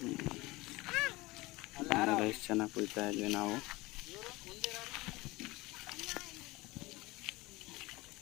ಎಷ್ಟು ಚೆನ್ನಾಗಿ ಕುಯ್ತಾ ಇದ್ವಿ ನಾವು.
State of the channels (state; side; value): quieter; right; 21.5 dB